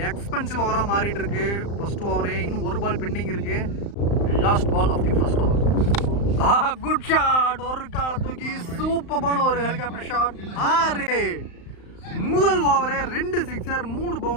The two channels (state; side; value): late; right; 35 ms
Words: எக்ஸ்பென்சிவ் ஓவரா மாறிட்டு இருக்கு. ஃபர்ஸ்ட் ஓவரே இன்னும் ஒரு பால் பெண்டிங் இருக்கு. Last ball of the first over. Good shot, ஒரு கால தூக்கி சூப்பரான ஒரு ஹெலிகாப்டர் ஷாட். 6 முதல் ஓவரே 2 சிக்ஸர் 3